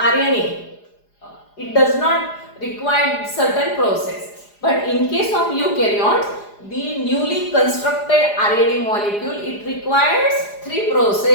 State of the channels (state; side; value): late; right; 4.9 ms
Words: it does not require certain process. But in case of eukaryotes, the newly constructed RNA molecule, it requires 3